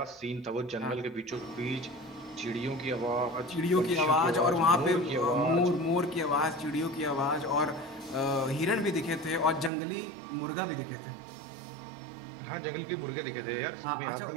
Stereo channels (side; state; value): left; drops out; at 9.7 s